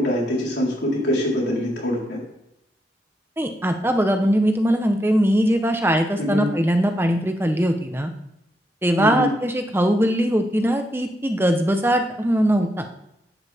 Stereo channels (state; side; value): normal; both; correlation 0.81